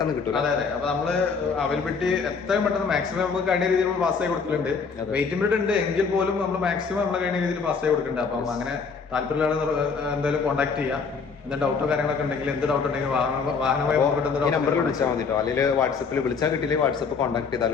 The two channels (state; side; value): quieter; right; 5.3 dB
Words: കിട്ടും. അതെ അതെ. അപ്പൊ നമ്മള് അവൈലബിലിറ്റി എത്രയും പെട്ടെന്ന് മാക്സിമം നമുക്ക് കഴിഞ്ഞ രീതിയിൽ നമ്മൾ പാസ് ആയി കൊടുക്കുന്നുണ്ട്. വെയിറ്റിംഗ് പീരീഡ് ഉണ്ട് എങ്കിൽ പോലും നമ്മൾ മാക്സിമം നമ്മളെ കഴിഞ്ഞ രീതിയിൽ പാസ് ആയി കൊടുക്കുന്നുണ്ട്. അപ്പം അങ്ങനെ താല്പര്യമുള്ള എന്തായാലും കോൺടാക്ട് ചെയ്യാം. എന്തെങ്കിലും ഡൗട്ടോ കാര്യങ്ങളൊക്കെ ഉണ്ടെങ്കിൽ എന്ത് ഡൗട്ട് ഉണ്ടെങ്കിൽ വാഹനമായി നമ്പറിൽ വിളിച്ചാൽ മതി കേട്ടോ. അല്ലെങ്കിൽ വാട്സപ്പിൽ വിളിച്ചാൽ കിട്ടിയില്ലെങ്കിൽ വാട്സപ്പ് കോൺടാക്ട്